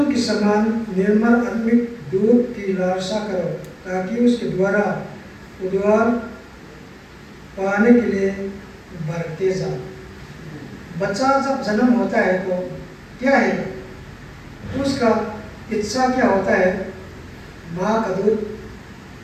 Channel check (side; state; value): both; identical; correlation 1.00